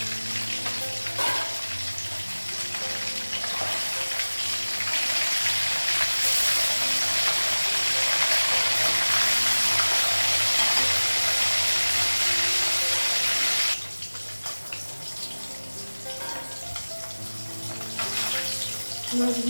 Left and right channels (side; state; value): both; inverted; correlation -1.00